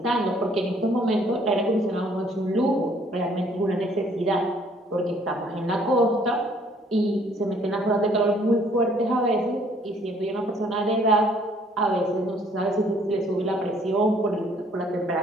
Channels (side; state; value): both; normal; correlation 0.61